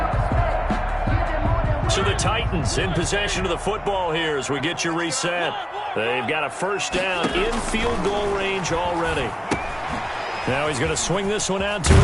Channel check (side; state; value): both; identical; correlation 1.00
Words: So the Titans in possession of the football here as we get you reset. They've got a first down in field goal range already. Now he's going to swing this one out to